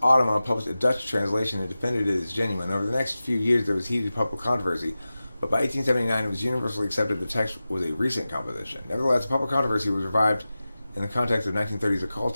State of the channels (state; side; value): inverted; both; correlation -0.95